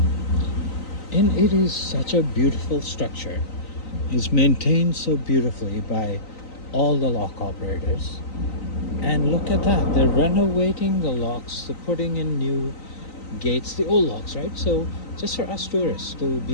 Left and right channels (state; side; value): late; right; 3.9 ms